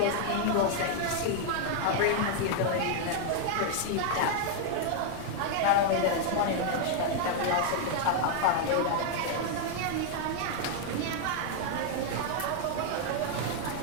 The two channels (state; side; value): different; both; correlation 0.00